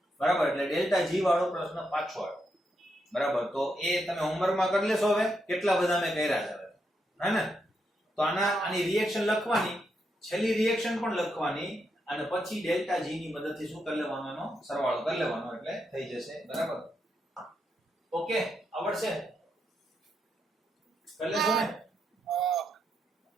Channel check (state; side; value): normal; both; correlation 0.81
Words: બરાબર. એટલે ડેલ્ટા G વાળો પ્રશ્ન પાછો આવ્યો. બરાબર. તો એ તમે હોમવર્કમાં કરી લેશો. હવે કેટલા બધા મેં કર્યા છે હે ને? તો આની રિએક્શન લખવાની, છેલ્લી રિએક્શન પણ લખવાની અને પછી ડેલ્ટા G ની મદદથી શું કરી લેવાનો? એનો સરવાળો કરી લેવાનો એટલે થઈ જશે. બરાબર. ઓકે, આવડશે? કરી લેશો ને?